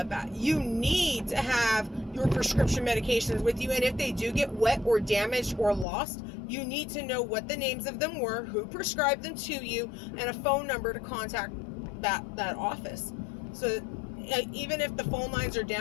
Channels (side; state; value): right; drops out; at 5.9 s